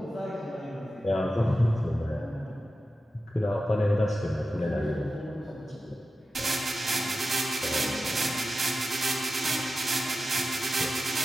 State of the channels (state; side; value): normal; both; correlation 0.92